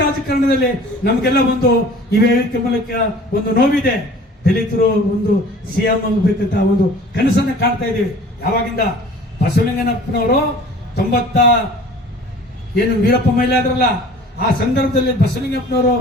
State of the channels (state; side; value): normal; both; correlation 0.47